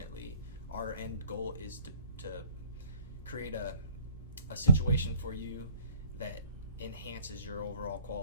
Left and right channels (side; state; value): both; inverted; correlation -0.56